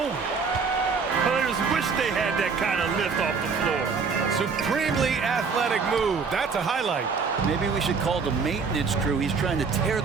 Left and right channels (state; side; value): quieter; left; 5.2 dB